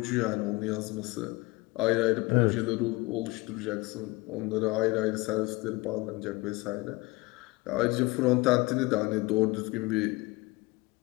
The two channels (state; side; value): quieter; right; 23.1 dB